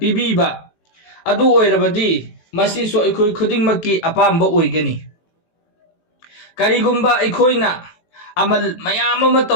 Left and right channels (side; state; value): right; late; 18 ms